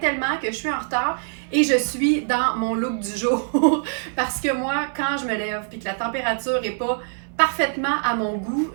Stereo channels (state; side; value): silent; left; digital silence